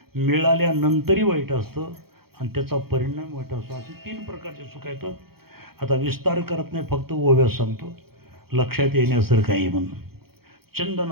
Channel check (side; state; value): left; late; 0.95 ms